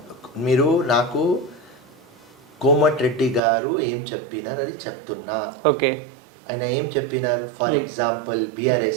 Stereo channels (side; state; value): left; drops out; at 3.4 s